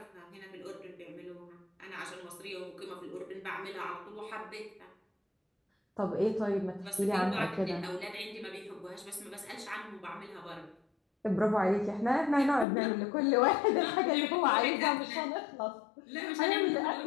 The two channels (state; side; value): drops out; right; at 12.7 s